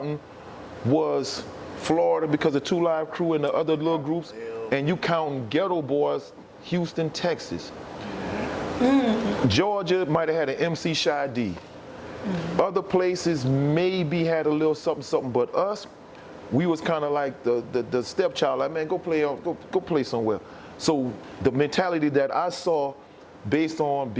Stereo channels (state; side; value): identical; both; correlation 1.00